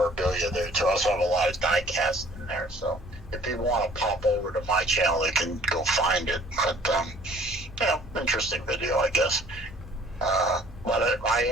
there too. I also have a lot of die-cast in there, so if people want to pop over to my channel, they can go find it. But interesting video, I guess. But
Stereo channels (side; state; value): both; normal; correlation 0.54